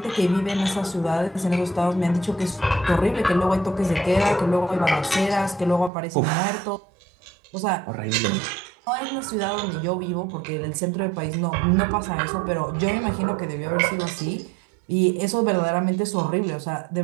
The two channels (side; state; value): left; drops out; at 5.9 s